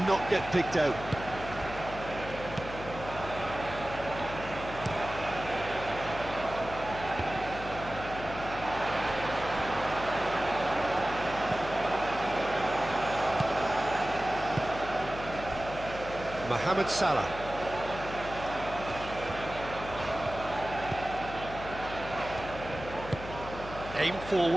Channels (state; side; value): noise; left; hum, 11 dB below the sound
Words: not get picked out. Mohamed Salah. Aim